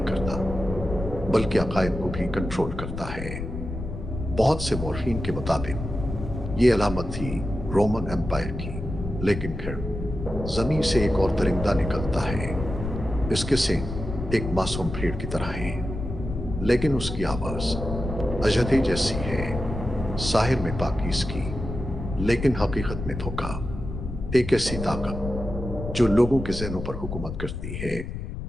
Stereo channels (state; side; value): noise; left; rumble, 7 dB below the sound